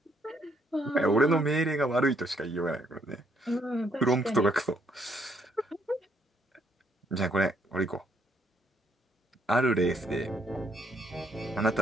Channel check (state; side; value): normal; both; correlation 0.71